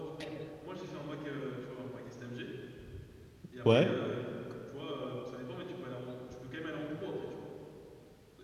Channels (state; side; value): identical; both; correlation 1.00